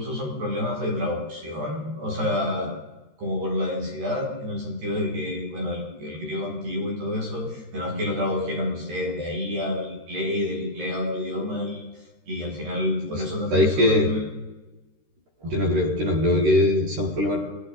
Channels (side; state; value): left; late; 13 ms